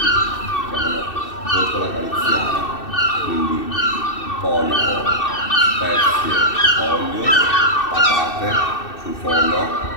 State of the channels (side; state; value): right; late; 2.6 ms